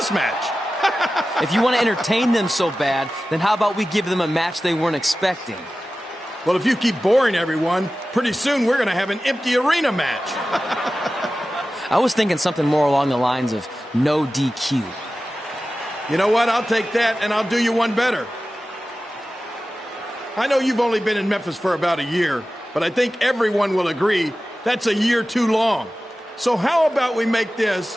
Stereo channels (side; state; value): both; normal; correlation 0.95